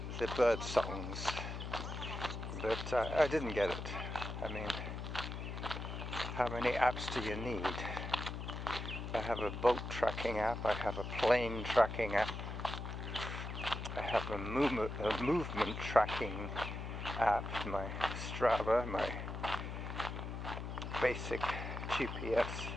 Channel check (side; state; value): left; noise; hum, 6 dB below the sound